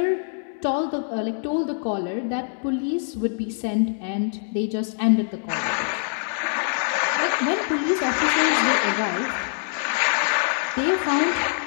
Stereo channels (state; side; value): silent; right; 63 dB below the other